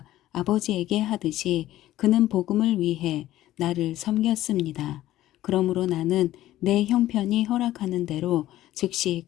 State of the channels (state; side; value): quieter; right; 14.5 dB